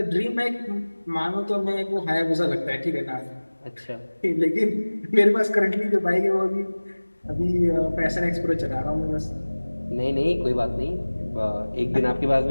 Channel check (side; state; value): both; inverted; correlation -1.00